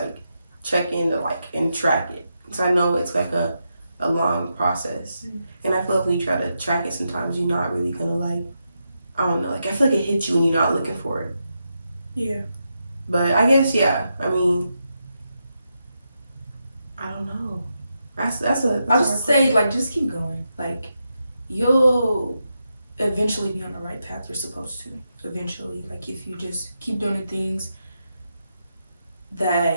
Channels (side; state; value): both; inverted; correlation -0.85